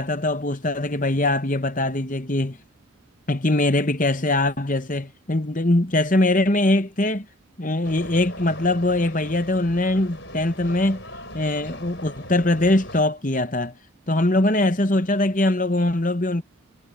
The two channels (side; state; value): both; normal; correlation 0.55